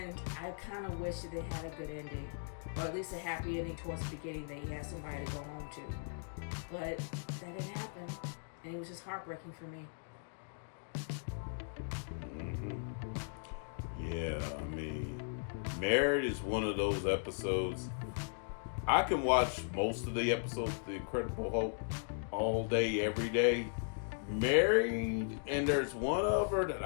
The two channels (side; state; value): right; silent; digital silence